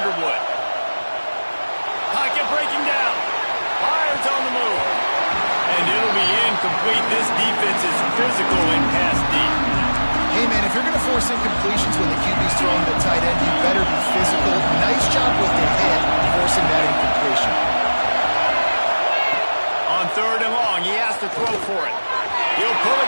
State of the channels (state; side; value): inverted; both; correlation -1.00